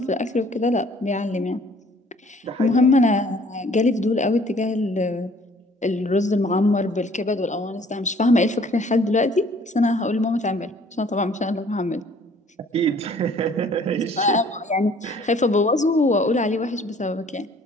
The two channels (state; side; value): normal; both; correlation 0.56